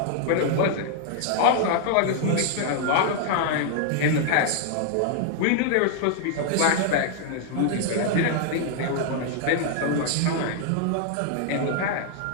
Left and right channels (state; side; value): different; both; correlation 0.00